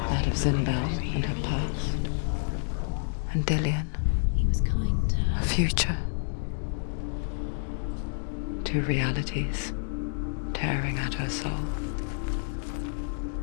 That of Zinbel and her past, and Dillian, her future. Two realities tearing at her soul.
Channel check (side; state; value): right; silent; digital silence